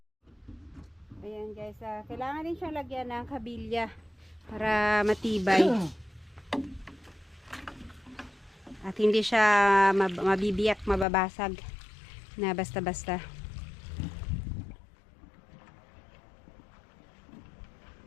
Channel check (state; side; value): drops out; right; at 11.1 s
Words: Ayan guys, kailangan din siyang lagyan ng kabilya para matibay. At hindi siya mabibiyak, mababasag na basta-basta.